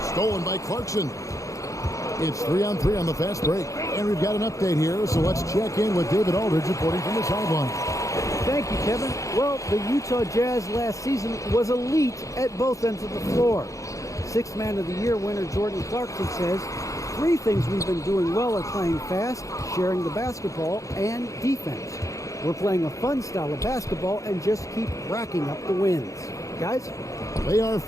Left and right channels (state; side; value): late; right; 0.16 ms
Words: stolen by Clarkson. It's 3-on-3 on the fast break. And we've got an update here, so let's check in with David Aldridge reporting from the sideline. Thank you, Kevin. Well, the Utah Jazz last season was elite at both ends of the floor. Sixth Man of the Year winner Jordan Clarkson says, 3 things we've been doing well are playing fast, sharing the basketball, and defense. We're playing a fun style of basketball and just keep racking up the wins. Guys? They are